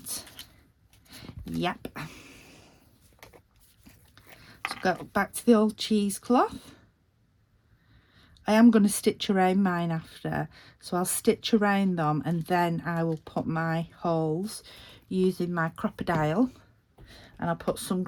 yep. So go back to the old cheesecloth. I am going to stitch around mine after, so I'll stitch around them and then I will put my holes using my crocodile, and I'll put some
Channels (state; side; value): identical; both; correlation 1.00